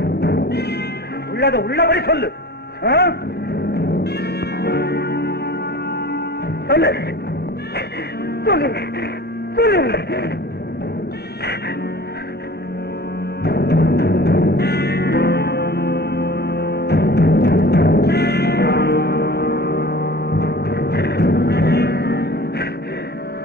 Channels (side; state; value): both; normal; correlation 0.41